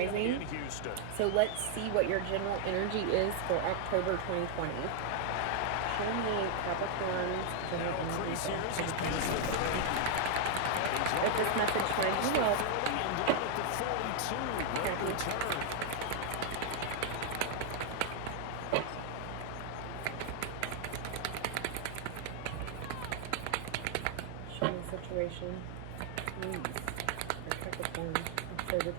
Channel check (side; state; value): both; different; correlation 0.00